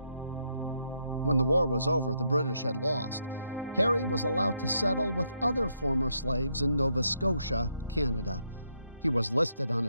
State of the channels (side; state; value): both; inverted; correlation -0.77